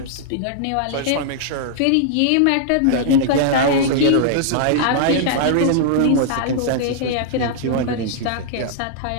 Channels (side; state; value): both; different; correlation -0.01